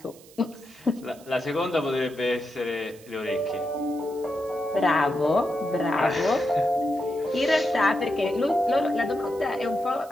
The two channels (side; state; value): right; noise; hiss, 23 dB below the sound